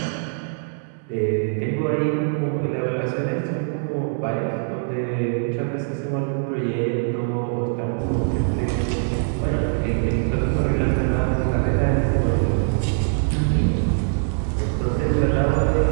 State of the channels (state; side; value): silent; left; 63 dB below the other